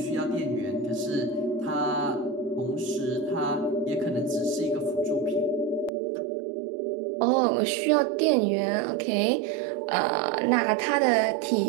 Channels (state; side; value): drops out; left; at 5.9 s